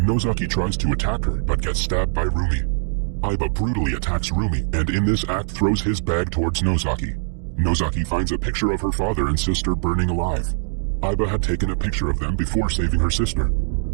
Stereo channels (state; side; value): silent; left; digital silence